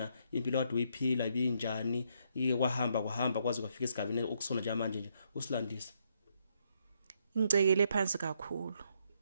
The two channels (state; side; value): inverted; both; correlation -0.74